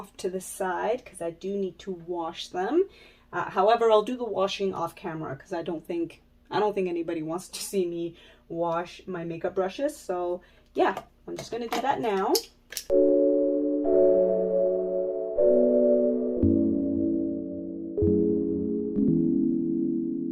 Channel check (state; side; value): identical; both; correlation 1.00